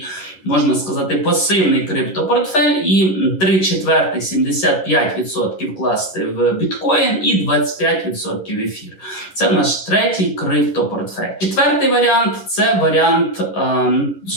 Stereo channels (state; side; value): late; right; 11 ms